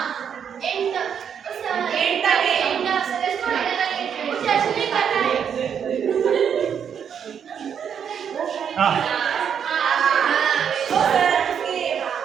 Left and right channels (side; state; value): left; quieter; 7.9 dB